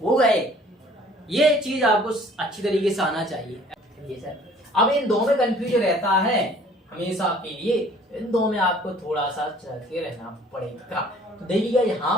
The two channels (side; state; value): both; normal; correlation 0.54